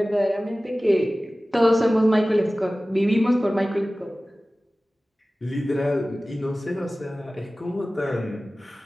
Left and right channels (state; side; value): normal; both; correlation 0.97